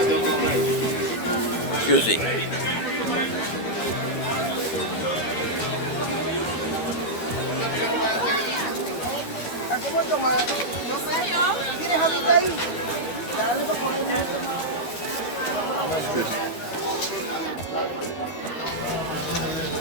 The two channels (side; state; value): right; late; 13 ms